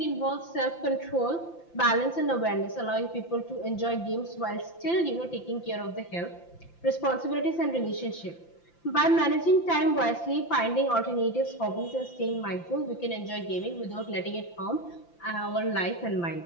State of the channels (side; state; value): right; late; 5.8 ms